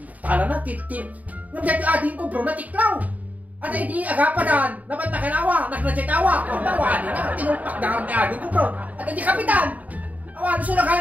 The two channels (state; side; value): late; left; 0.074 ms